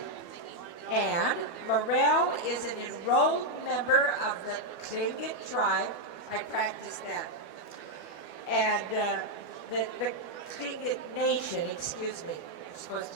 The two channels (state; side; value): late; right; 12 ms